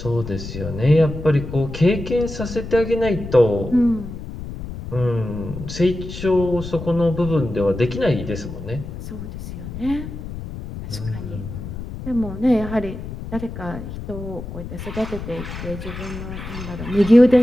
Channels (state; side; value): noise; left; rumble, 9 dB below the sound